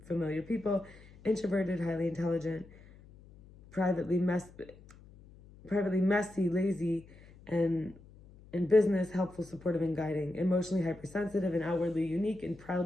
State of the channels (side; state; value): left; noise; hum, 22 dB below the sound